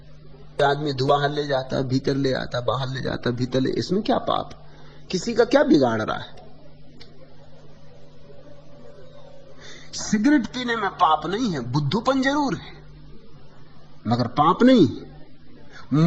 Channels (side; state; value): both; identical; correlation 1.00